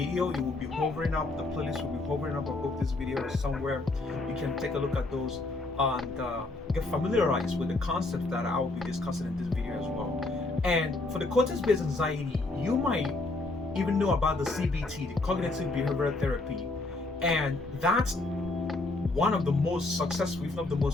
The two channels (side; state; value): right; quieter; 3.1 dB